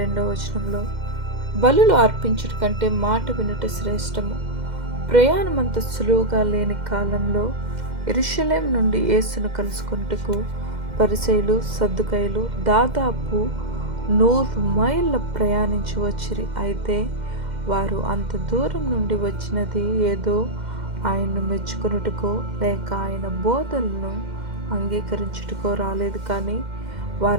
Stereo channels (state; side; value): late; left; 2.1 ms